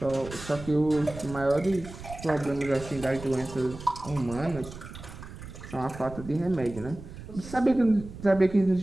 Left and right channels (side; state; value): right; noise; rumble, 13 dB below the sound